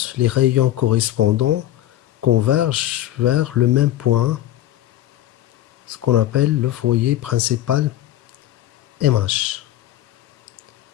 les rayons correspondants convergent vers le même point, ce qu'on appelle le foyer principal MH.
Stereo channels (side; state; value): right; quieter; 13.6 dB